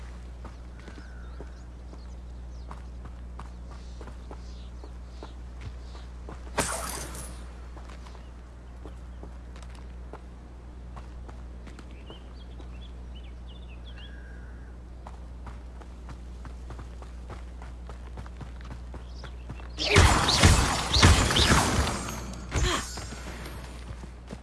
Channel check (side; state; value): both; identical; correlation 1.00